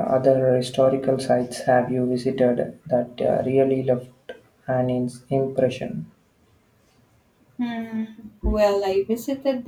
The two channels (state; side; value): identical; both; correlation 1.00